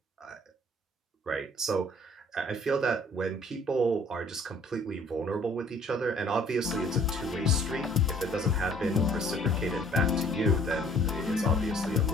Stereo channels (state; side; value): normal; both; correlation 0.57